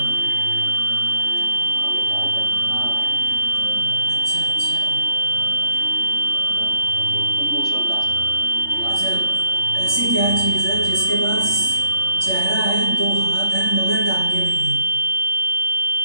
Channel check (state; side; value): late; right; 3.4 ms